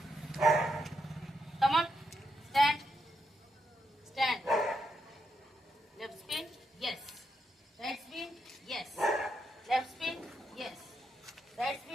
Come on. Stand. Stand. Left spin. Yes. Right spin. Yes. Left spin. Yes. Right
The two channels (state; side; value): normal; both; correlation 0.82